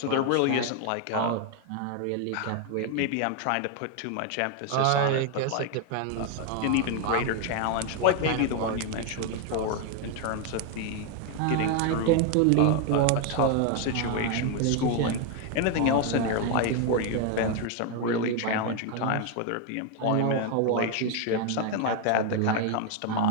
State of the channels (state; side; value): different; both; correlation 0.01